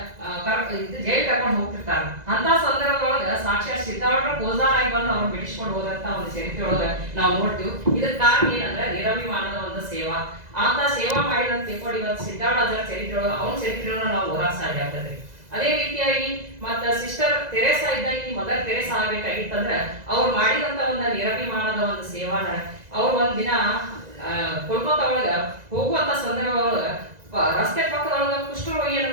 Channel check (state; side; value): late; left; 2.0 ms